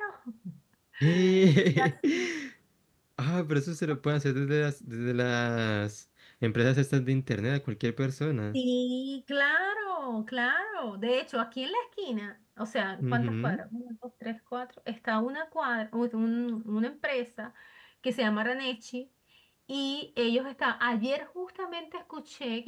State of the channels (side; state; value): both; identical; correlation 1.00